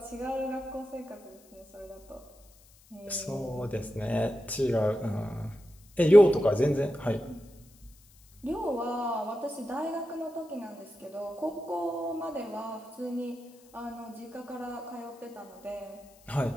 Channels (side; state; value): left; noise; hiss, 27 dB below the sound